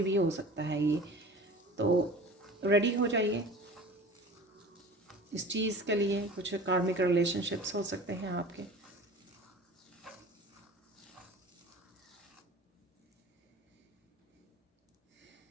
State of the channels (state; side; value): normal; both; correlation 0.39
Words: भी हो सकता है ये। तो रेडी हो जाइए इस चीज़ के लिए। कुछ कार्मिक रिलेशनशिप्स हो सकते हैं आपके।